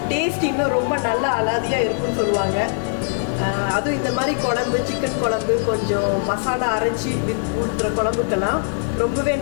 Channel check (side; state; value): right; silent; digital silence